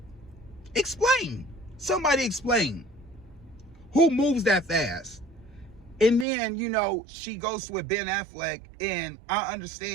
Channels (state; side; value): drops out; left; at 6.2 s